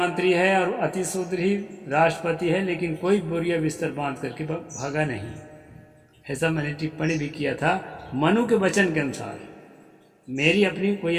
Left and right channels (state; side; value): identical; both; correlation 1.00